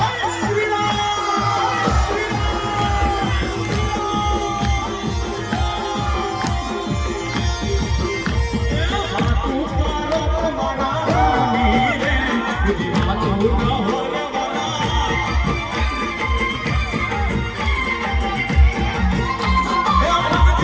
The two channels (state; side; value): identical; both; correlation 1.00